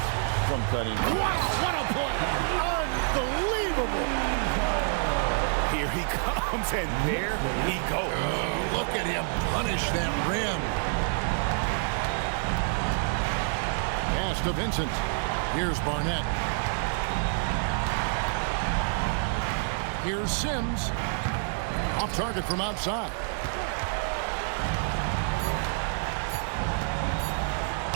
from Cunningham. Wow, what a play! Unbelievable! Here he comes, and there he goes. Oh, look at him punish that rim. Pass to Vincent. Here's Barnett. Here's Sims. Off target from outside.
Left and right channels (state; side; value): silent; left; 59 dB below the other